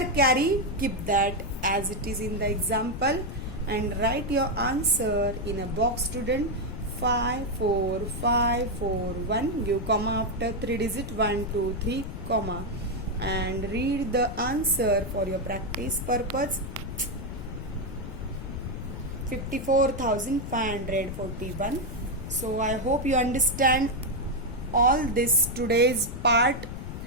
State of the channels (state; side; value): noise; left; rumble, 8 dB below the sound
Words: carry, keep that as it is in the example and write your answer in a box, student. 5 4 5 4 1. Give comma after 3 digit 1 2 3 comma and read the answer for your practice purpose. 54,541. So I hope you understand all this today's part,